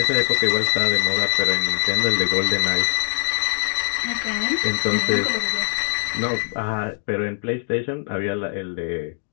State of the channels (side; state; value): right; silent; 62 dB below the other